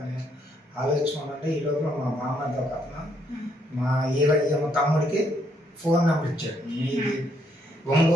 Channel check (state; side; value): normal; both; correlation 0.72